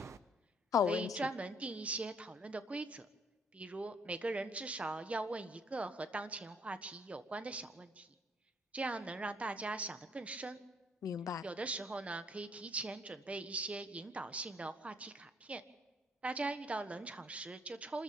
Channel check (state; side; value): normal; both; correlation 0.65